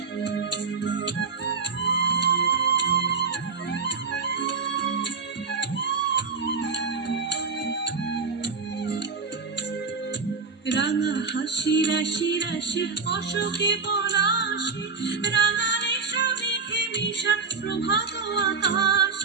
রাঙা হাসি রাশি রাশি অশোকে পলাশে রাঙা রেশা মেঘে মিশা প্রভাত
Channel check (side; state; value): left; quieter; 5.0 dB